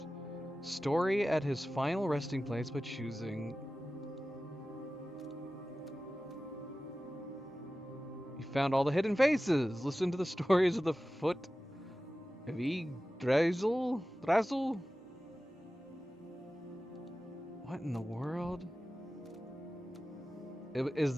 story at his final resting place by choosing. You found all the hidden faces. Listen to the stories of the foot of Yggdrasil. What in the world? Does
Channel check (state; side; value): normal; both; correlation 0.95